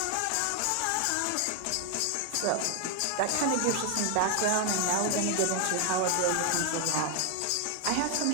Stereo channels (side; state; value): both; different; correlation 0.00